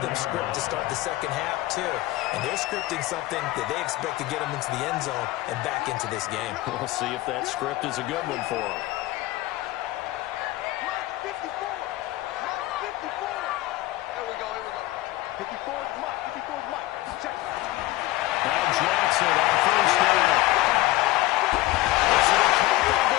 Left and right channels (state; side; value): quieter; right; 17.9 dB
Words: them script to start the second half, too. And they're scripting something that they expect to get them into the end zone and back into this game. We'll see if that script is a good one for them. 54 is Mike. 54 is Mike. Check. Now Jackson on first down. This is a